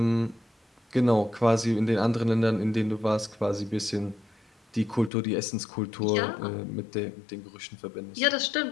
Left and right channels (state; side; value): drops out; right; at 5.1 s